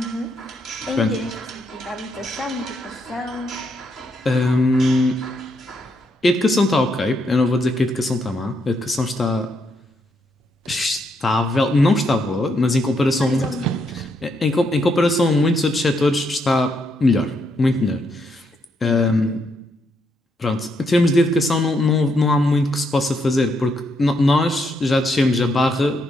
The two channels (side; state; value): both; normal; correlation 0.77